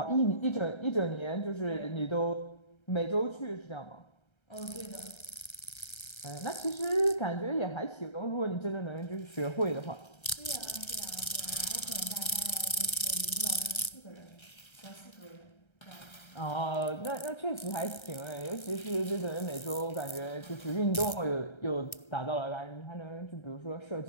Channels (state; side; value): late; right; 1.3 ms